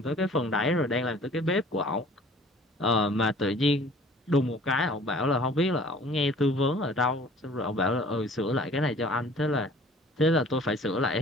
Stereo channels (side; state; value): both; normal; correlation 0.50